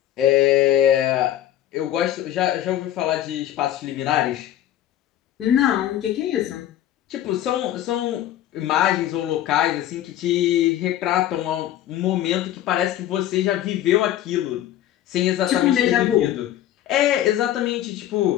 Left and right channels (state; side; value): quieter; right; 12.3 dB